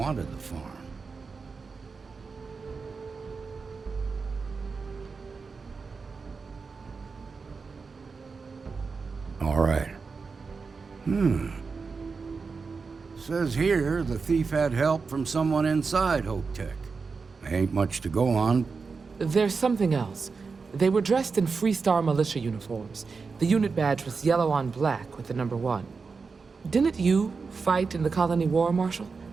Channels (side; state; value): left; quieter; 4.8 dB